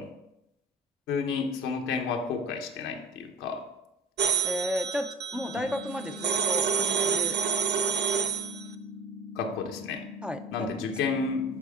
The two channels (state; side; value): normal; both; correlation 0.38